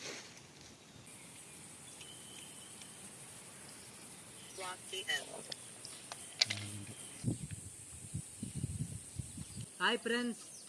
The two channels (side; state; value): both; identical; correlation 1.00